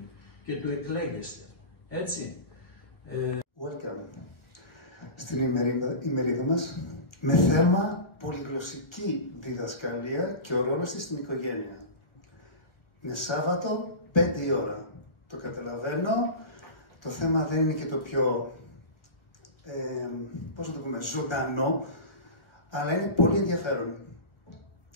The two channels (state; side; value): late; right; 1.6 ms